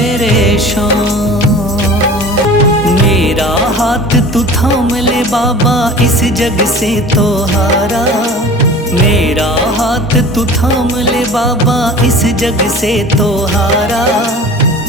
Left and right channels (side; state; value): both; normal; correlation 0.41